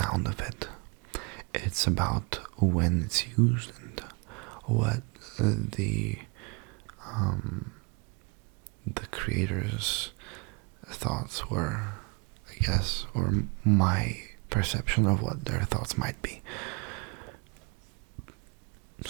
of it. It's about when it's used and what the creator's thoughts were, I guess, or my perception of what their thoughts might be.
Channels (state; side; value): quieter; left; 30.3 dB